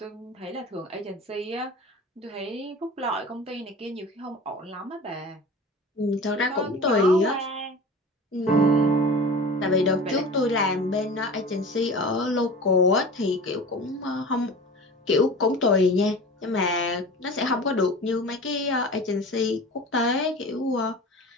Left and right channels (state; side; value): normal; both; correlation 0.36